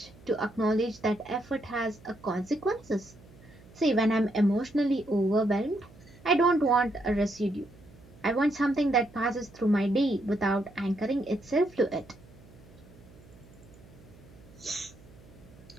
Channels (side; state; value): right; noise; hum, 23 dB below the sound